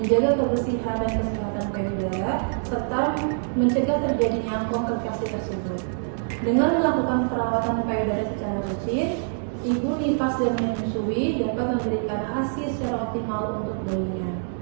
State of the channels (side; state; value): left; silent; digital silence